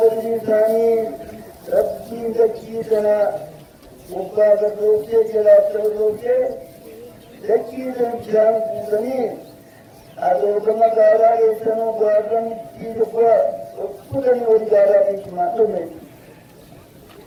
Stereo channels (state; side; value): identical; both; correlation 1.00